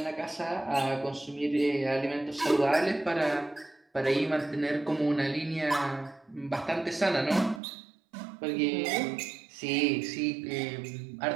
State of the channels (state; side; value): drops out; left; at 7.6 s